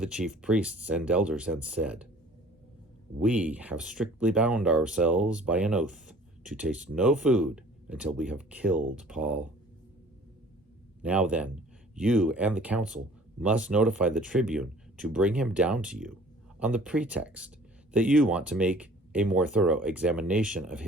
chief priests and elders and said, "We have strictly bound ourselves by an oath to taste no food until we have killed Paul. Now then, you and the council must notify the tribune to bring him down to you, on the pretext that you want to make a more thorough examination of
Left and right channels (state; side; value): normal; both; correlation 0.51